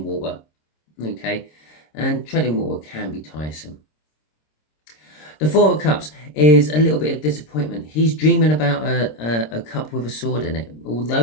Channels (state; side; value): late; right; 26 ms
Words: water. Okay, and treading water can be tiresome. The Four of Cups is a little bit of disappointment. He's dreaming about a cup with a sword in it.